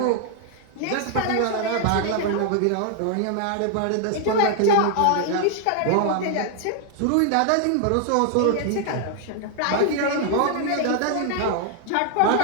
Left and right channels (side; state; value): both; different; correlation 0.00